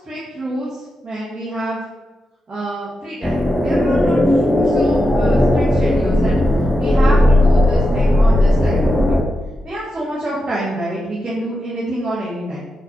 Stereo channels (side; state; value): both; normal; correlation 0.88